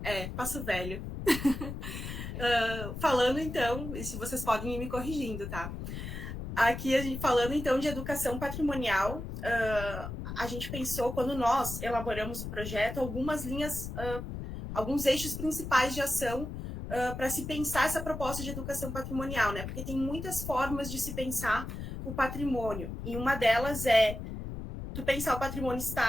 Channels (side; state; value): left; noise; rumble, 7 dB below the sound